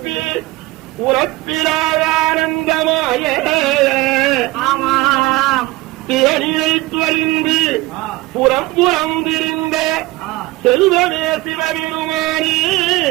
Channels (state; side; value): quieter; left; 19.9 dB